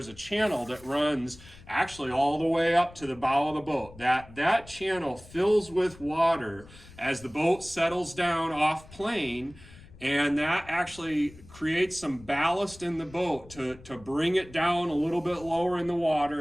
a channel that runs actually all the way up to the bow of the boat. That channel fills with water as the boat settles down off plane, and that actually creates some ballast in the boat to bring it down a little bit lower in the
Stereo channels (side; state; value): left; noise; rumble, 21 dB below the sound